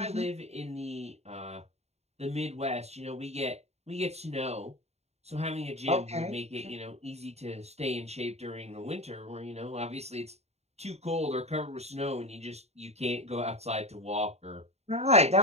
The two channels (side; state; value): left; late; 0.31 ms